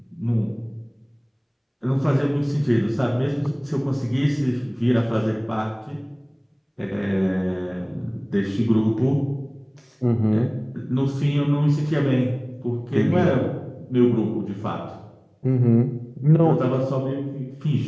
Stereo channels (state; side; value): identical; both; correlation 1.00